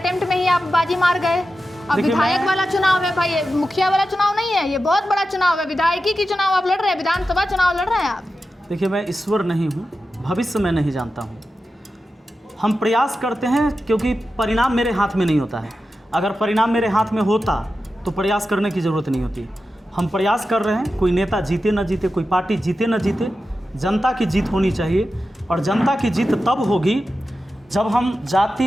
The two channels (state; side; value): normal; both; correlation 0.92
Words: में ही आप बाजी मार गए। अब विधायक वाला चुनाव है भाई, मुखिया वाला चुनाव नहीं है, ये बहुत बड़ा चुनाव है। विधायकी की चुनाव आप लड़ रहे हैं, विधानसभा चुनाव लड़ रहे हैं आप। देखिए, मैं ईश्वर नहीं हूँ, भविष्य में नहीं जानता हूँ। हम प्रयास करते हैं क्योंकि परिणाम मेरे हाथ में नहीं होता है। अगर परिणाम मेरे हाथ में होता तो प्रयास करने की ज़रूरत नहीं होती। हम प्रयास कर रहे हैं। कोई नेता जीते न जीते, कोई पार्टी जीते न जीते, जनता की जीत होनी चाहिए। और जनता की जीत तब होगी जब हम